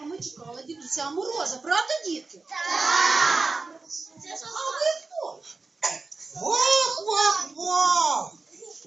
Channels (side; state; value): left; quieter; 3.9 dB